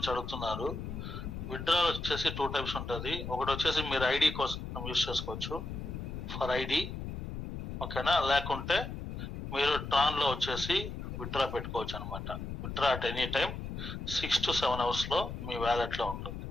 అడుగుతున్నారు. విత్డ్రా వచ్చేసి 2 types ఉంటుంది. ఒకటి వచ్చేసి మీరు ఐడి కోసం యూజ్ చేసుకోవచ్చు ఫర్ ఐడి. ఓకేనా, లేకుంటే మీరు ట్రాన్ లో వచ్చేసి విత్డ్రా పెట్టుకోవచ్చు అనమాట. Withdraw at any time 6 to 7 hours లో మీ వ్యాలెట్ లో ఉంటుంది,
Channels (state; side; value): noise; left; rumble, 7 dB below the sound